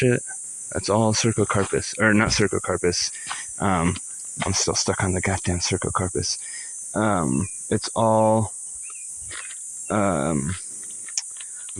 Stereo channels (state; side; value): identical; both; correlation 1.00